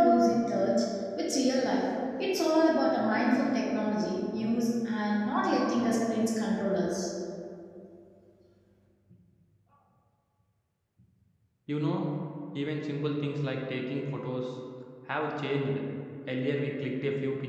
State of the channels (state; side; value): identical; both; correlation 1.00